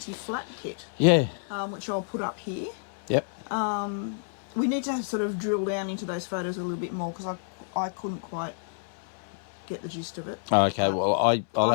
kit, Yeah. which I'll put up here. Yep. We need to sort of drill down into those photos a little bit more because I couldn't quite get the gist of it. Okay, well, I'll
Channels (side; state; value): right; silent; 59 dB below the other